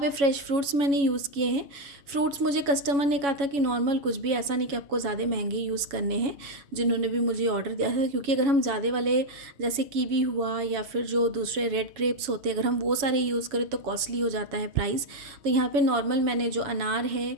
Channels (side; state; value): left; late; 7.1 ms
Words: फ्रेश फ्रूट्स मैंने यूज़ किए हैं। फ्रूट्स मुझे कस्टमर ने कहा था कि नॉर्मल, कुछ भी ऐसा नहीं कि आपको ज़्यादा महंगे यूज़ करने हैं, जिन्होंने भी मुझे ऑर्डर दिया था। क्योंकि अगर हम ज़्यादा वाले जैसे कीवी हुआ या फिर जो दूसरे रेड ग्रेप्स होते हैं, अगर हम वो सारे यूज़ करें तो कॉस्टली हो जाता है प्राइस। तो यहाँ पे नॉर्मल मैंने जो अनार है,